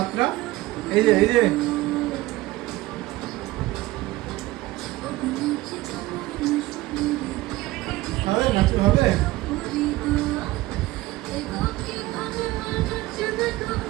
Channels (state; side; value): quieter; left; 18.4 dB